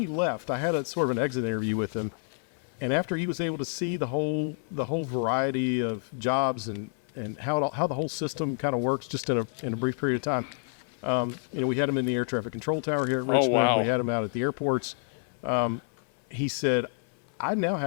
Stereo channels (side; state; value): right; silent; 58 dB below the other